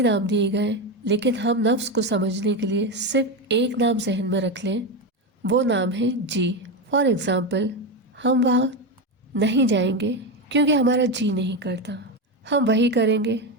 نام دیے گئے، لیکن ہم نفس کو سمجھنے کے لیے صرف ایک نام ذہن میں رکھ لیں، وہ نام ہے جی۔ فار ایگزامپل، ہم وہاں نہیں جائیں گے کیونکہ ہمارا جی نہیں کرتا، ہم وہی کریں گے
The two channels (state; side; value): normal; both; correlation 0.14